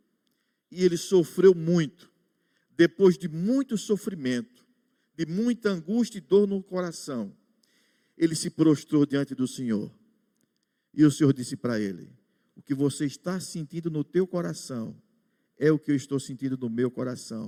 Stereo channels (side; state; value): both; identical; correlation 1.00